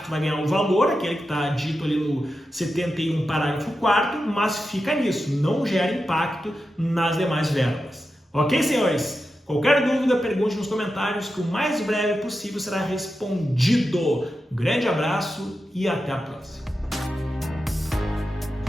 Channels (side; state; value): both; normal; correlation 0.90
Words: Tu vai ganhar um valor, aquele que está dito ali no 71, parágrafo 4º, mas fica nisso, não gera impacto nas demais verbas. Ok, senhores? Qualquer dúvida, pergunte nos comentários que o mais breve possível será respondido. Um grande abraço e até a próxima.